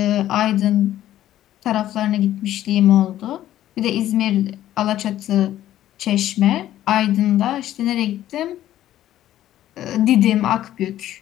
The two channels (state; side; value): quieter; right; 12.9 dB